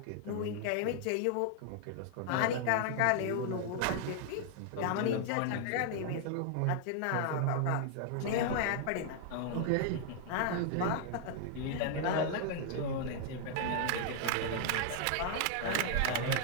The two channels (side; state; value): both; different; correlation 0.00